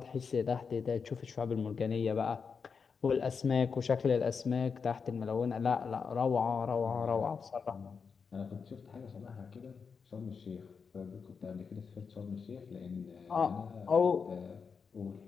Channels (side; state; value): right; quieter; 5.7 dB